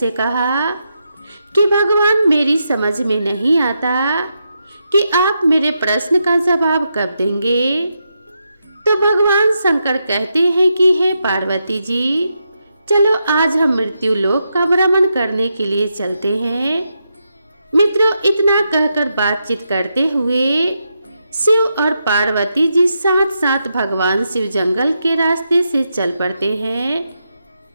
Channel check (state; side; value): inverted; both; correlation -0.84